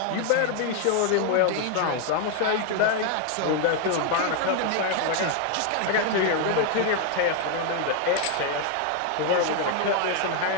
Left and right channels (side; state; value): both; different; correlation 0.01